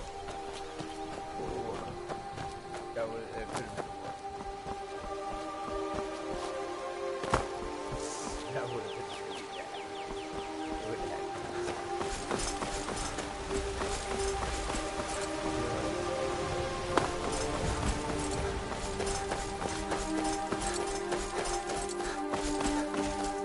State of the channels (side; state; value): both; identical; correlation 1.00